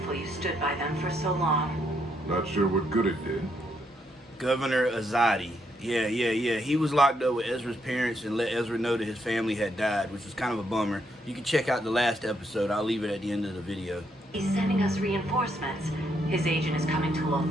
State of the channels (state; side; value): normal; both; correlation 0.76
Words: you stood by them for so long. Not sure what good it did. Governor Azadi. Yeah. He was locked up with Ezra's parents and let Ezra know that his family had died, which was kind of a bummer. You can check out the last episode. I'll leave it at the end of the video. He's sending us reinforcements. His agent is coming to